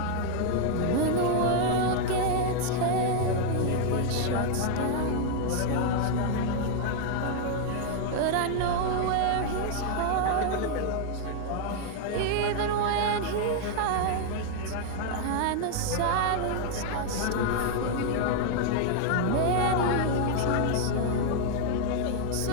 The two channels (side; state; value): both; different; correlation 0.00